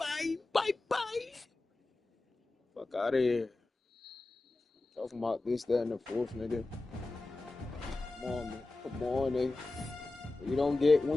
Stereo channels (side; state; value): right; quieter; 3.1 dB